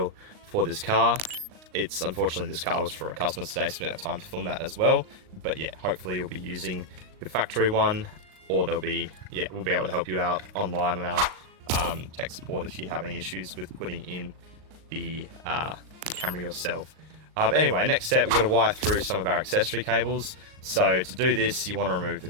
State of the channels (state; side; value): late; left; 38 ms